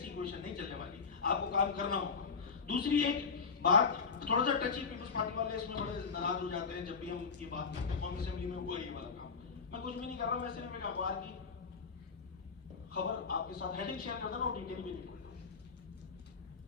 क्वेश्चन नहीं चलने वाली, आपको काम करना होगा। दूसरी एक बात, थोड़ा सा टची, पीपल्स पार्टी वाले इसमें बड़े नाराज हो जाते हैं जब भी हम ये बात करते हैं। कौमी असेंबली में हुआ ये वाला काम, मैं कुछ भी नहीं कर रहा हूं, मैं सिर्फ एक अखबार की खबर आपके साथ हेडिंग शेयर करता हूं, डिटेल भी नहीं।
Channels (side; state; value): right; quieter; 5.3 dB